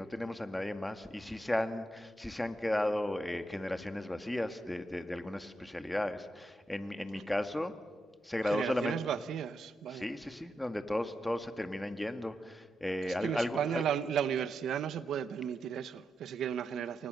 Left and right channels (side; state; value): both; normal; correlation 0.85